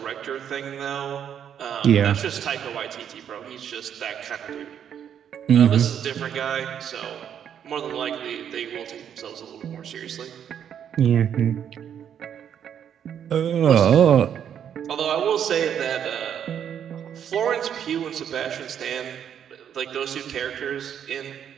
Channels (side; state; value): left; quieter; 8.9 dB